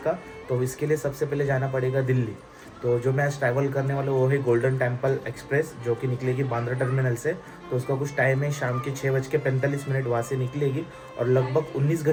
तो इसके लिए सबसे पहले जाना पड़ेगा दिल्ली। तो जो मैं आज ट्रैवल करने वाला हूँ वो है गोल्डन टेम्पल एक्सप्रेस, जो कि निकलेगी बांद्रा टर्मिनल से। तो उसका कुछ टाइम है, शाम के 6:45 वहाँ से निकलेगी और लगभग 19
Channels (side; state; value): both; identical; correlation 1.00